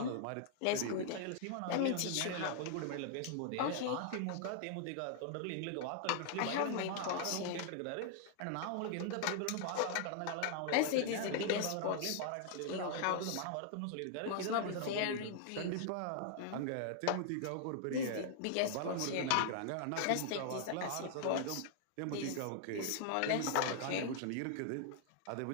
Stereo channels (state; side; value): different; both; correlation -0.01